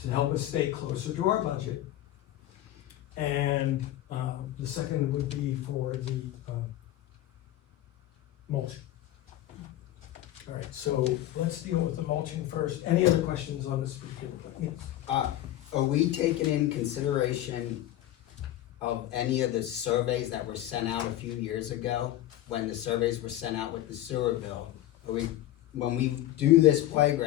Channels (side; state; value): right; quieter; 13.7 dB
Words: to help us stay closer to our budget? And, the second would be for the, mulching. Alright, so let's deal with the mulching first. Any other questions on this particular? Yes. Are we taking in consideration of any of the surveys that were sent out a few years ago? When the surveys were sent out with the sewer bill? When we do this